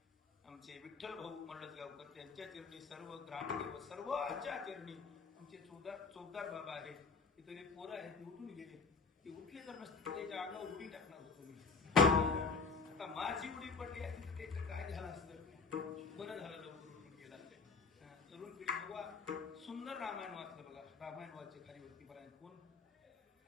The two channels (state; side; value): quieter; right; 4.6 dB